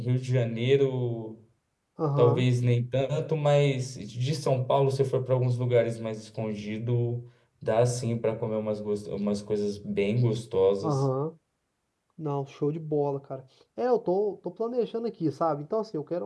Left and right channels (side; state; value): both; identical; correlation 1.00